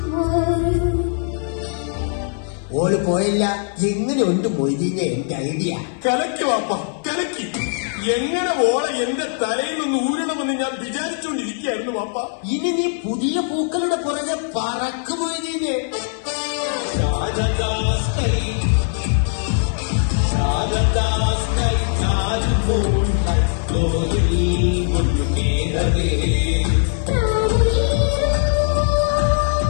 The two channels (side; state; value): right; silent; 63 dB below the other